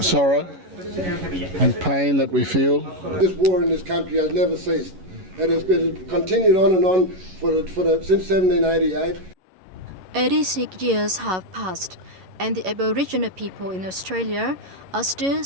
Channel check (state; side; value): late; left; 11 ms